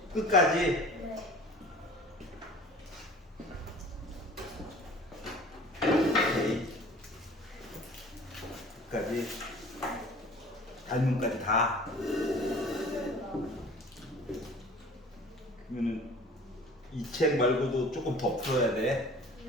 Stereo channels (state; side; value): normal; both; correlation 0.45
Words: 끝까지? 네. 오케이. 끝까지. 닮은까지 다. 그러면은 이 책 말고도 조금 더 풀어야 돼.